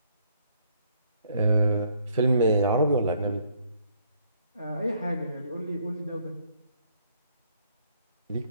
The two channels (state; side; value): inverted; both; correlation -0.67